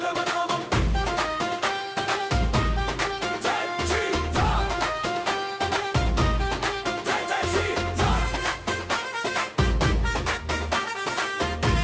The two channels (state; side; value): identical; both; correlation 1.00